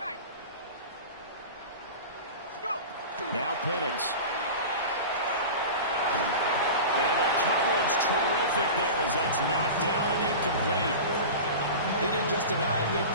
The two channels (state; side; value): inverted; both; correlation -0.31